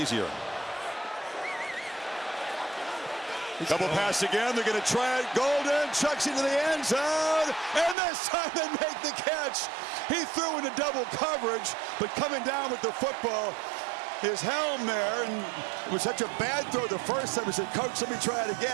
Double pass again. They're going to try it. Golden chucks into the end zone. And this time they make the catch. He threw into double coverage, but coming down with the football, his helm there, and it was such a bad throw the first time. He said, Coach, let me try it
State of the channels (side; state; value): left; drops out; at 8.0 s